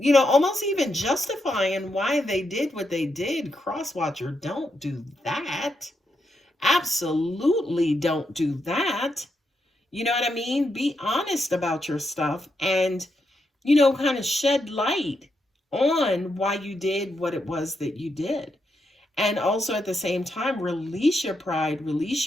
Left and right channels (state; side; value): normal; both; correlation 0.82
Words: Almost even justifying why they did what they did. Crosswatcher, don't do that. Absolutely don't do that. You know what I mean? Be honest about your stuff and, kind of shed light on why you did what it was that you did. And also at the same time, release your pride, release